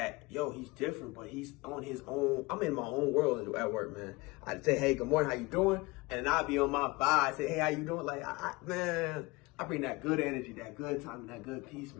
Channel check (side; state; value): right; quieter; 23.6 dB